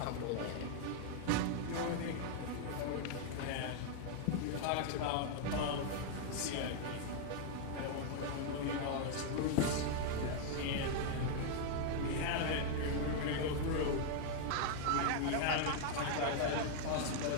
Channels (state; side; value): different; both; correlation 0.00